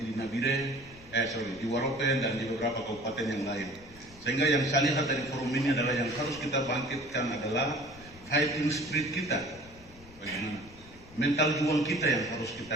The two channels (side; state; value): left; noise; rumble, 22 dB below the sound